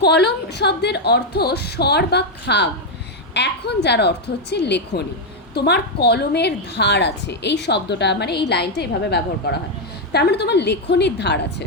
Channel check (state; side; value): normal; both; correlation 0.02